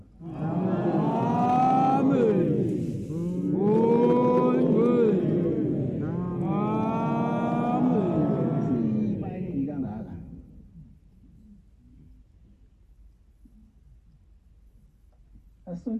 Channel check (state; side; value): identical; both; correlation 1.00